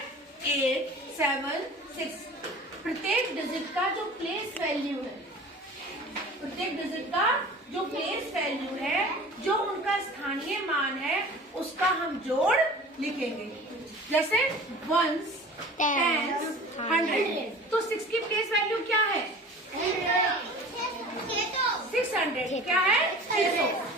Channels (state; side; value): normal; both; correlation 0.41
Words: 8, 7, 6, प्रत्येक डिजिट का जो प्लेस वैल्यू है, प्रत्येक डिजिट का जो प्लेस वैल्यू है, जो उनका स्थानीय मान है, उसका हम जोड़ लिखेंगे। जैसे 1s, 10s, 100। तो 6 की प्लेस वैल्यू क्या है? 600। क्या है? 600।